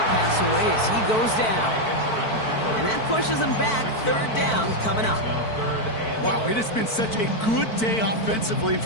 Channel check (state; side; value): late; right; 4.5 ms